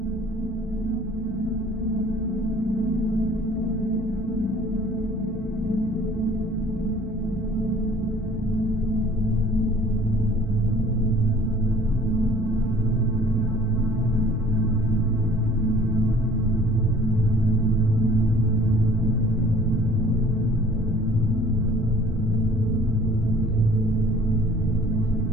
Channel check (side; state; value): both; normal; correlation 0.52